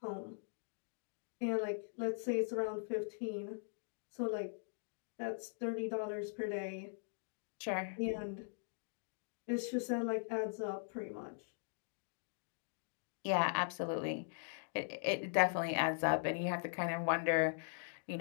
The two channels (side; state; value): right; silent; digital silence